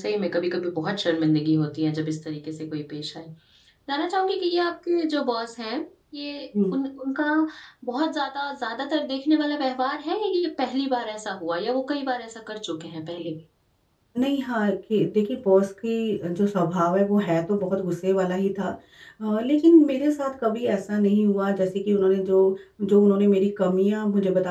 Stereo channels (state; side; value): identical; both; correlation 1.00